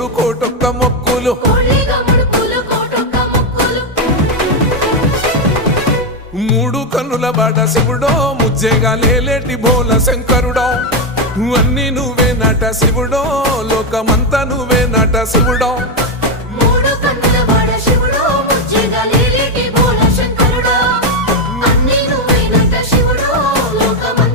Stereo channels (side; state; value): both; normal; correlation 0.06